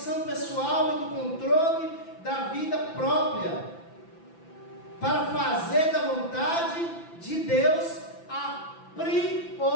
pessoal e do controle da vida própria, para fazer da vontade de Deus a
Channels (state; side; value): late; right; 5.9 ms